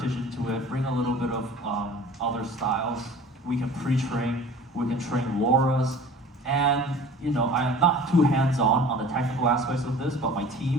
into it, bring a little bit of other styles. We can pre-train, we can train LoRa's, and I am not too hands-on the technical aspects of this, but my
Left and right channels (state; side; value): normal; both; correlation 0.43